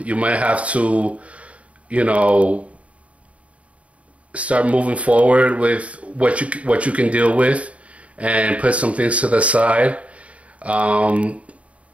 You might have to, you know, start moving forward with what you can deal with, and put some things to the side.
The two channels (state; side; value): late; left; 0.065 ms